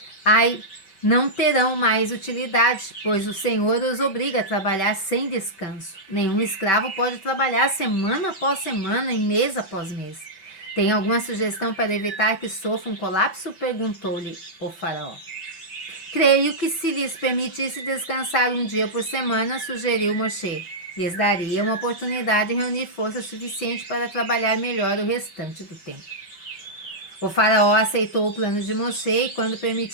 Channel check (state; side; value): late; right; 5.2 ms